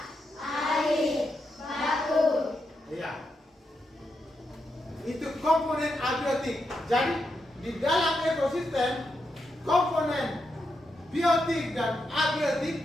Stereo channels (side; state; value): both; normal; correlation 0.84